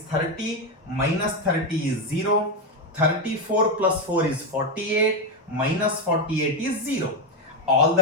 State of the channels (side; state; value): both; normal; correlation 0.08